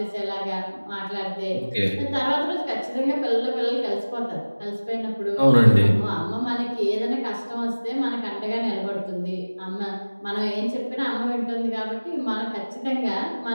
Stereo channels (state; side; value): inverted; both; correlation -1.00